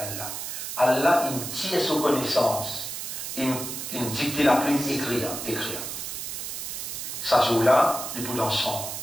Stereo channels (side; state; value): right; noise; hiss, 6 dB below the sound